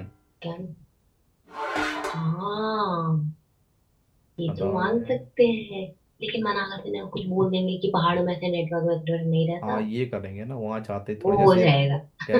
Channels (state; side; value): identical; both; correlation 1.00